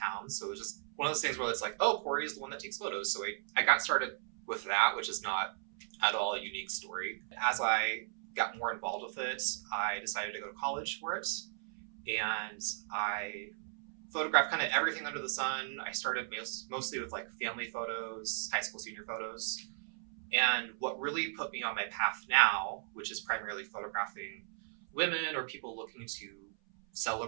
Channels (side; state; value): left; silent; 54 dB below the other